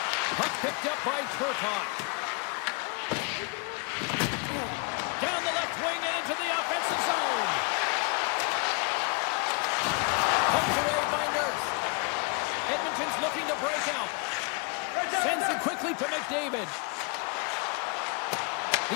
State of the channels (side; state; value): right; quieter; 31.5 dB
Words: Puck picked up by Turcotte. Down the left wing and into the offensive zone. Poked away by Nurse. Edmonton's looking to break out. Sends it quickly to McDavid.